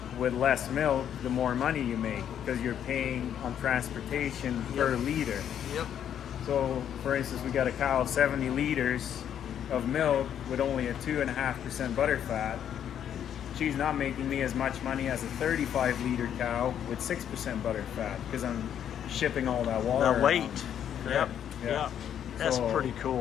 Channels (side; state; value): right; quieter; 9.5 dB